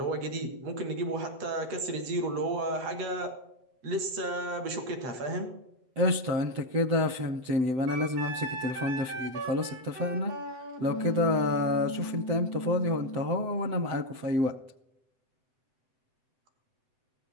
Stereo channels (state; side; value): late; left; 7.8 ms